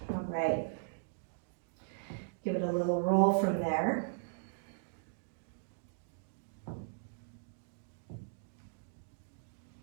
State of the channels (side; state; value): left; silent; digital silence